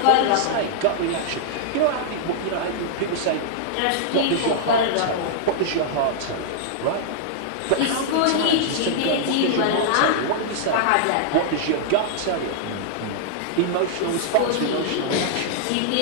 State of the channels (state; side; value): different; both; correlation -0.01